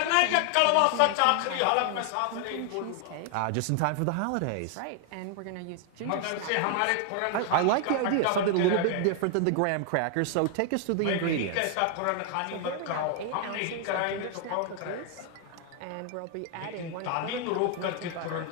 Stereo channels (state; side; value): different; both; correlation 0.00